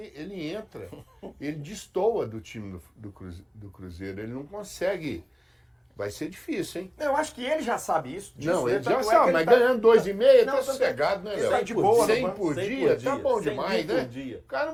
ele entra, ele destoa do time do Cruzeiro, ele não consegue. Vai ser difícil, hein? Eu acho que ele já sabe isso. Não, ele já tanto é sabe, que mas ele ganhando 2,5 tá Não, sossegado, né, ele Léo? tá de boa, 100 né? por 100 dia, por tá dia, bom 100 demais, por né? dia. O cara não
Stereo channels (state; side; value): identical; both; correlation 1.00